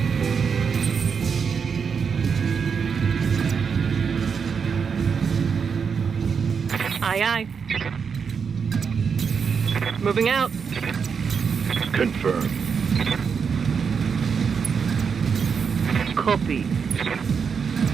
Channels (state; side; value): quieter; left; 6.2 dB